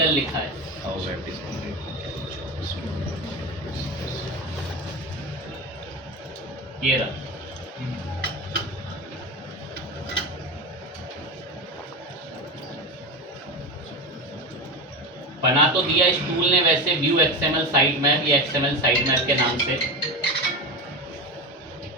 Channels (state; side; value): normal; both; correlation 0.22